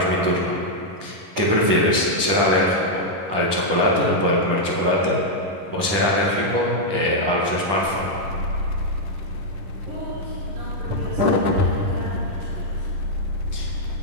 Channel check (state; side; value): late; left; 10 ms